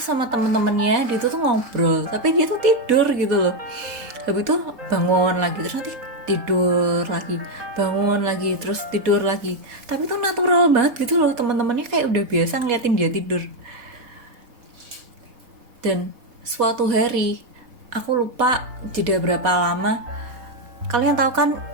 sama temen-temennya dia tuh ngobrol, tapi dia tuh tidur gitu loh. Habis itu bangun lagi, terus nanti tidur lagi, bangun lagi, terus tidur lagi. Tapi tuh natural banget gitu loh, teman-temannya kayak udah biasa ngeliatin dia tidur. Dan suatu hari, aku lupa jeda berapa lama, kalian tahu kan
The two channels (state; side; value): late; left; 4.1 ms